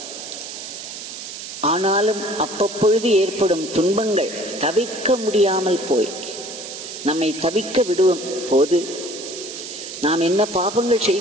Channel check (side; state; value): right; noise; hiss, 10 dB below the sound